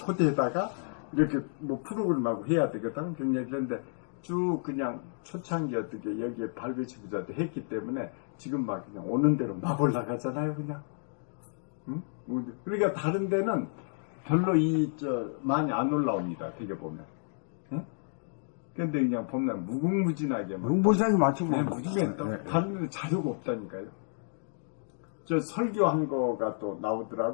이렇게 뭐 프로그램하고 해야 되거든. 그런데 쭉 그냥 초창기 어떻게 여기에 발배치부자 했기 때문에 지금 막 그냥 오는 대로 막 올라가잖아요. 그냥. 응? 그러니까 다른 데는 별로 많이 안 올라옵니다. 되게 보면. 응? 근데 그냥 보면 무궁무진하게. 무궁무진하게 많지 뭐. 네, 무궁무진하게. 다른 데는 자료가 없다니까요. 설교한 거가 또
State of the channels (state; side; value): silent; right; digital silence